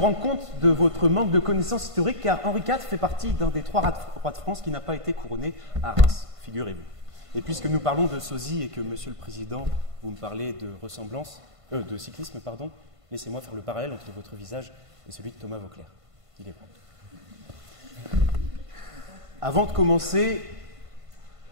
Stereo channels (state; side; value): late; left; 1.5 ms